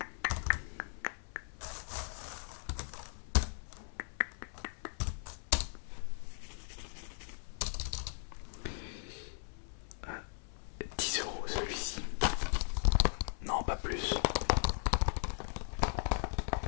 « 10 € celui-ci. Non, pas plus.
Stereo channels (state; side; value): silent; right; 53 dB below the other